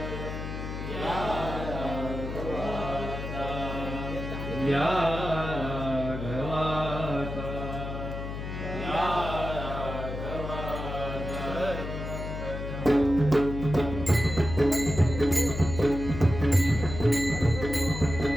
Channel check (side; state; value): left; noise; hum, 6 dB below the sound